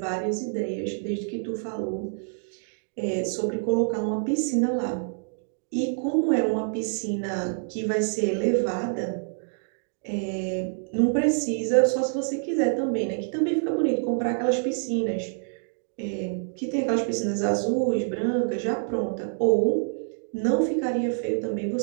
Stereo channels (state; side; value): silent; left; digital silence